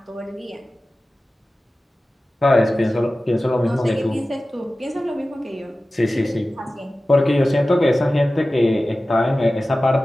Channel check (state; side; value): normal; both; correlation 0.96